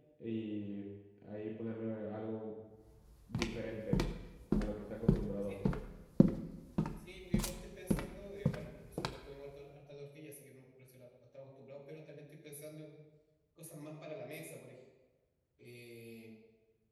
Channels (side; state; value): both; identical; correlation 1.00